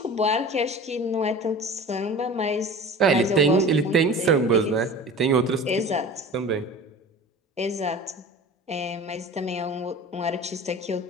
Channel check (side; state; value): both; normal; correlation 0.38